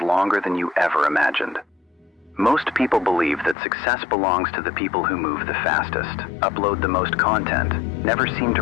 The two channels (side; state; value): right; drops out; at 3.6 s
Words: than you ever imagined. Most people believe that success belongs to the people who move the fastest, upload the most content, never seem to